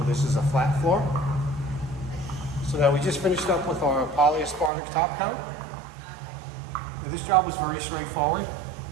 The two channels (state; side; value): drops out; left; at 4.7 s